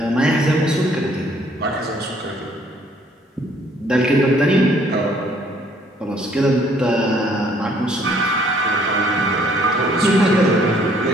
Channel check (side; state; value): both; normal; correlation 0.62